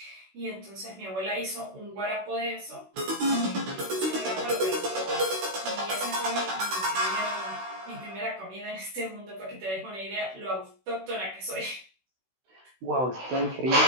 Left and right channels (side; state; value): left; late; 16 ms